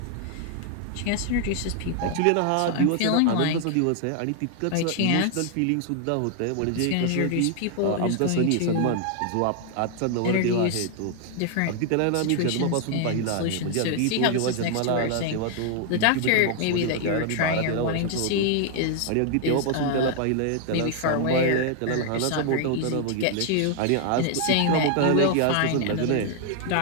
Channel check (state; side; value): different; both; correlation 0.00